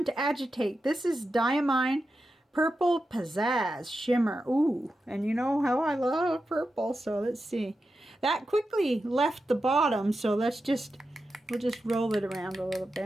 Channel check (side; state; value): both; normal; correlation 0.90